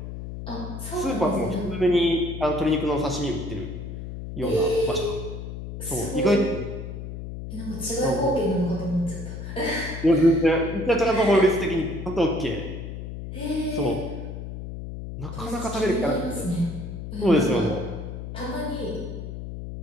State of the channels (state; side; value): noise; left; hum, 8 dB below the sound